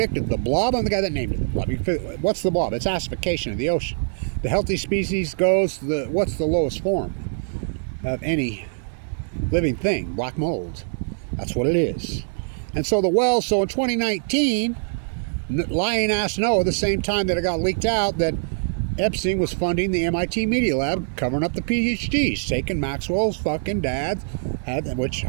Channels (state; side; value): silent; left; 63 dB below the other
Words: the blob, I'm the guy that named it. The blob. What's the blob? It's acidification of the ocean. The healthy species goes, what's the lowest form of any living thing? Black mold. That's what it is. And so the well, so in 2019, lying ass no, at the same time that it got leaked out that Epstein was funding the MIT Media Lab, covering up the PhDs, taking Maxwell's fucking dad, which